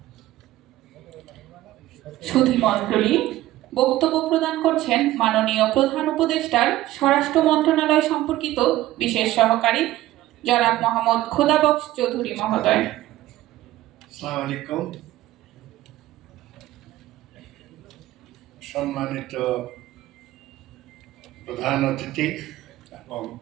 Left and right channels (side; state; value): left; quieter; 15.5 dB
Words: সুধী মণ্ডলী, বক্তব্য প্রদান করছেন মাননীয় প্রধান উপদেষ্টার স্বরাষ্ট্র মন্ত্রণালয় সম্পর্কিত বিশেষ সহকারী জনাব মোহাম্মদ খোদাবক্স চৌধুরী মহোদয়। আসসালামু আলাইকুম। সম্মানিত প্রধান অতিথি এবং